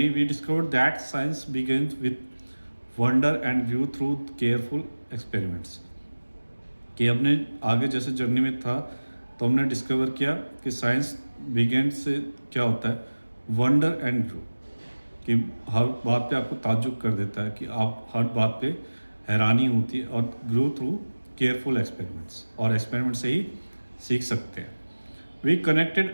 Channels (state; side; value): inverted; both; correlation -1.00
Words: we discover that science begins with wonder and view through careful experiments. कि हमने आगे जैसे जर्नी में था तो हमने डिस्कवर किया कि साइंस बिगिन से क्या होता है, वंडर एंड व्यू, कि हर बात पे आपको ताज्जुब कर देता है, कि आप हर बात पे हैरानी होती है, और ग्रो थ्रू केयरफुल एक्सपेरिमेंट्स, और एक्सपेरिमेंट से ही सीख सकते हैं। We